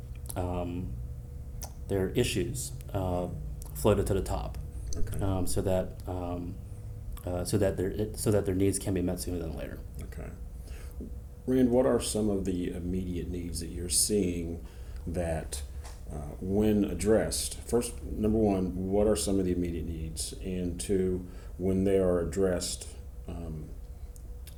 issues floated to the top, Okay. so that their needs can be met sooner than later. Okay. Rand, what are some of the immediate needs that you're seeing that, when addressed, first, number one, what are some of the immediate needs? And two, when they are addressed,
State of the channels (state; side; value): identical; both; correlation 1.00